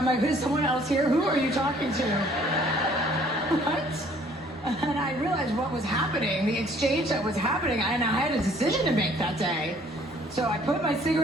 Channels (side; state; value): both; normal; correlation 0.58